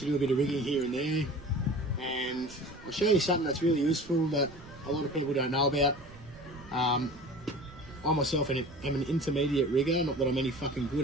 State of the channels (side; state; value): right; noise; rumble, 19 dB below the sound